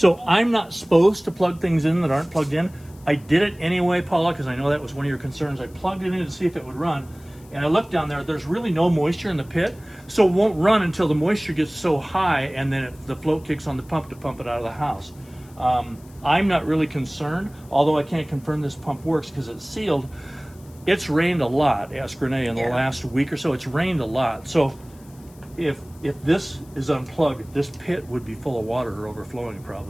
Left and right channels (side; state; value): left; noise; hiss, 27 dB below the sound